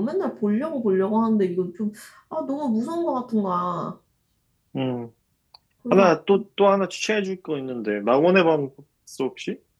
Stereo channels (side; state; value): both; identical; correlation 1.00